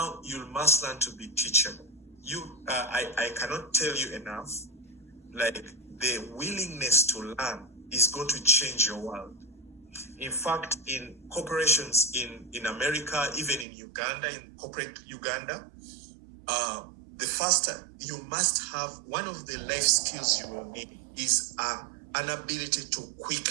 you must learn to be teachable. I cannot tell you enough, like, the willingness to learn is going to change your world. In fact, in corporations in America, even in Uganda, in corporate Uganda, the faster you must have, one of the life skills you will need is an ability to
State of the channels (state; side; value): drops out; left; at 13.7 s